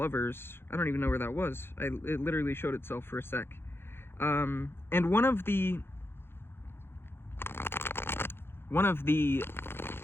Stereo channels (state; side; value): late; right; 0.11 ms